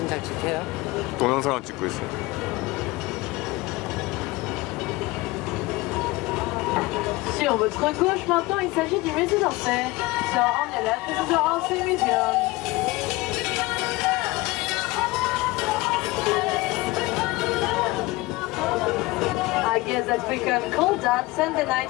잘 찍혀요? 동영상을 찍고 있어요. Sur votre gauche maintenant, il s'agit du musée d'Orsay. So on your left, this is the Orsay Museum. I guess that we can call that Sunday Night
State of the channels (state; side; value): quieter; right; 21.2 dB